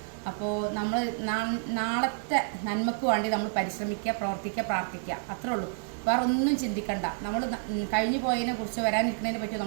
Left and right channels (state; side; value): silent; left; digital silence